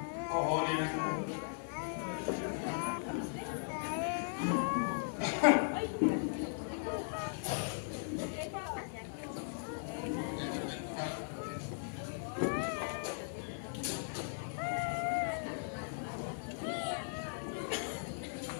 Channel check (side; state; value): right; silent; 52 dB below the other